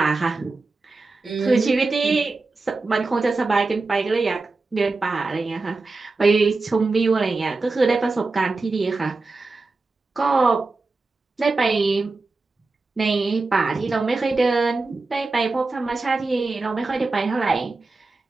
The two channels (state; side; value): quieter; left; 3.6 dB